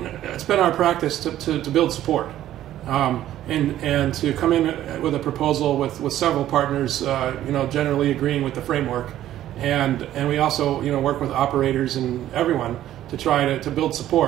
It's been our practice to build support. And to come in with a proposal with several partners, generally agreeing with the framework, and we also work with operators and everyone to try to build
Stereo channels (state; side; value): quieter; left; 12.7 dB